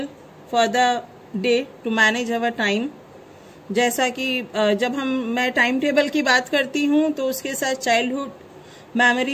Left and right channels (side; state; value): both; identical; correlation 1.00